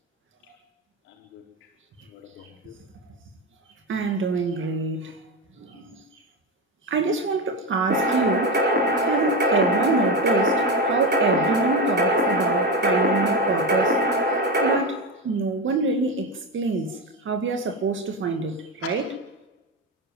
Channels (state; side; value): normal; both; correlation 0.16